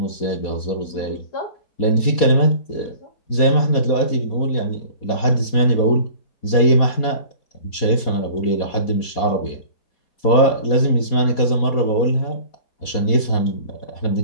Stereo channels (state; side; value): late; right; 4.2 ms